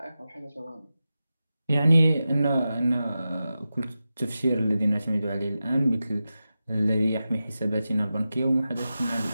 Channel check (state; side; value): inverted; both; correlation -0.93